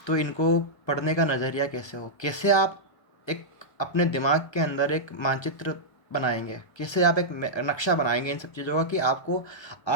तो इनको पढ़ने का नज़रिया कैसे हो, कैसे आप एक अपने दिमाग के अंदर एक मानचित्र बनाएंगे, कैसे आप एक नक्शा बनाएंगे इन सब चीज़ों का, कि आपको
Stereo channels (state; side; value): late; right; 1.2 ms